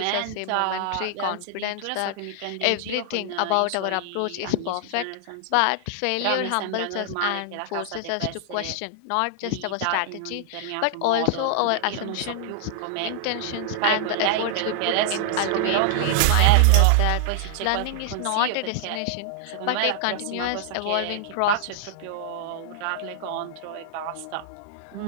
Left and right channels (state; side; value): different; both; correlation -0.01